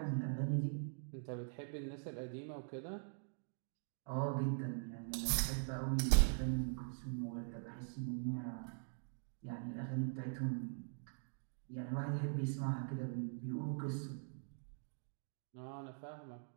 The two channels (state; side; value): silent; left; digital silence